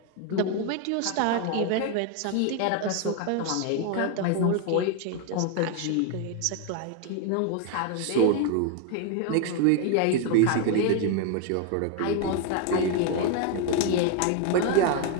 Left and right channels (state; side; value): different; both; correlation 0.01